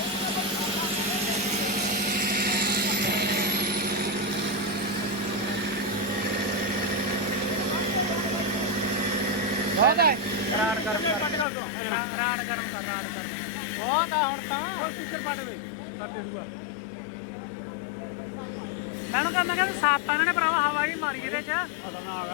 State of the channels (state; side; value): drops out; right; at 11.5 s